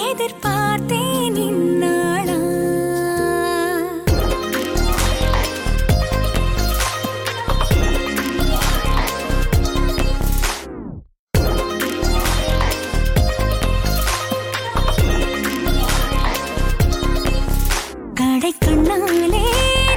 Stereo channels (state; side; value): identical; both; correlation 1.00